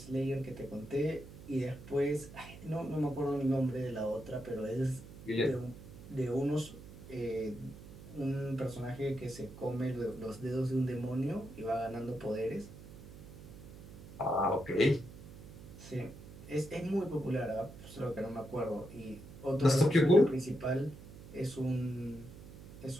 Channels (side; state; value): right; noise; hum, 16 dB below the sound